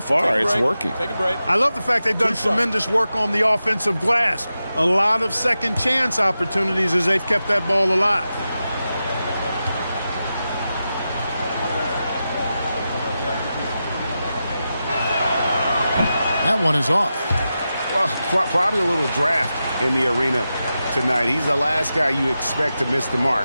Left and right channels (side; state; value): both; inverted; correlation -0.91